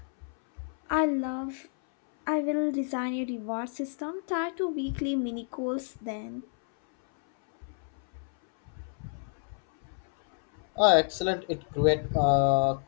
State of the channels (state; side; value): silent; right; 58 dB below the other